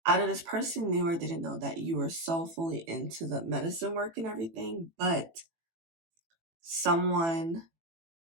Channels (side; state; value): left; late; 18 ms